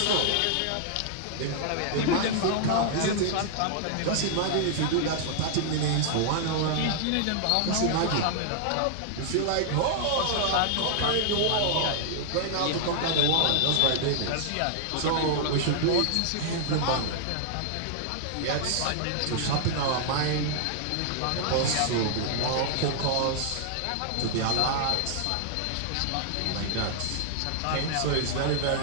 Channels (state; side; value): different; both; correlation -0.01